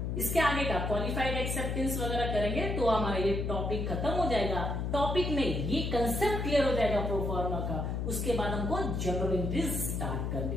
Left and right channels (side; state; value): left; noise; hum, 1 dB below the sound